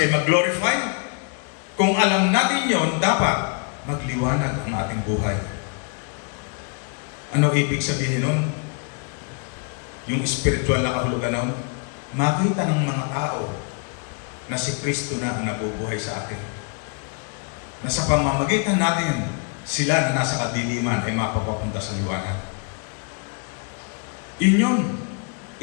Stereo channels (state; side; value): quieter; right; 36.4 dB